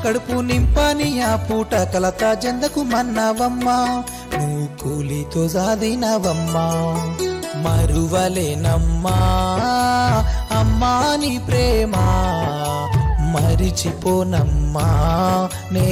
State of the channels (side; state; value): both; identical; correlation 1.00